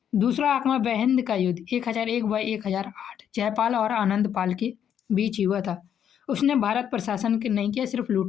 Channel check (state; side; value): quieter; right; 9.1 dB